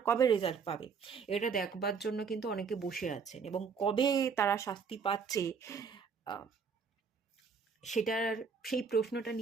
কবে রেজাল্ট পাবে, এটা দেখবার জন্য কিন্তু অনেকে বসে আছেন। এবং কবে তারা শাস্তি পাচ্ছে, সেটার, সেই প্রশ্নটা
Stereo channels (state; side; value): quieter; left; 5.8 dB